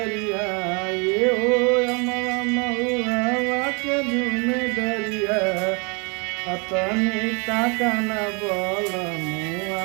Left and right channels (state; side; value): quieter; left; 32.3 dB